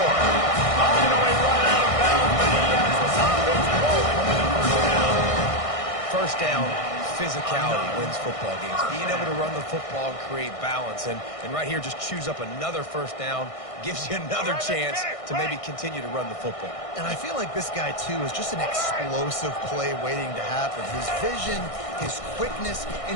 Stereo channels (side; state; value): right; late; 1.6 ms